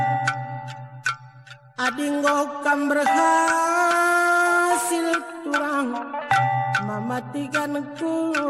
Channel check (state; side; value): identical; both; correlation 1.00